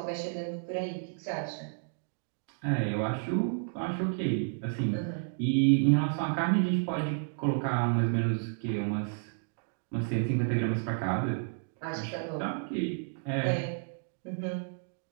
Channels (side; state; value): left; silent; digital silence